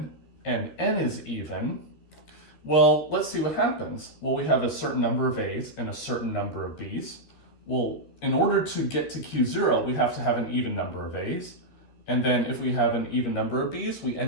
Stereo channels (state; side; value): late; right; 13 ms